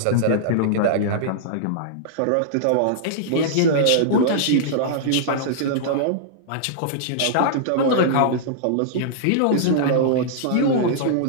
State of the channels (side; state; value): both; different; correlation -0.02